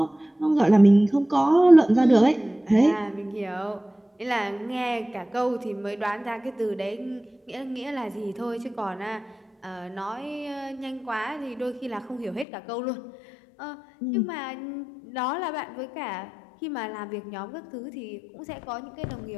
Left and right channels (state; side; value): drops out; right; at 12.5 s